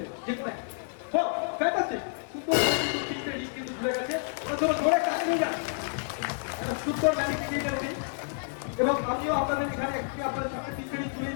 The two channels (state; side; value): silent; right; digital silence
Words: যে কোনো একটা, ফ্যান্টাস্টিক, সুন্দর, 3টে রিং কিন্তু জুড়ে গেছে। জোরে কাজ হয়ে যায়, একটা সুন্দর ম্যাজিক ক্রিয়েটার উনি। এবং আমিও আপনাদের এখানে একটি আপনাদের সামনে 3টে রিং